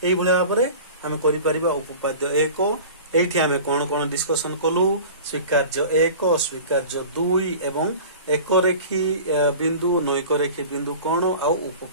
एई भलिया भाबरे आमे करि परिबा उपपाद्य 1 एठी आमे कोन कोन डिस्कशन कलु स्वीकार्य 1 स्वीकार्य 2 एवं एक रेखी बिंदु नैक रेखी बिंदु कोन आ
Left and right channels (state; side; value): inverted; both; correlation -0.39